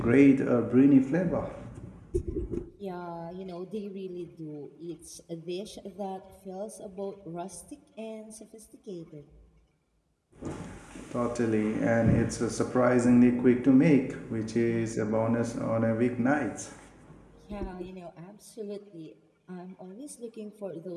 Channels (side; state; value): both; identical; correlation 1.00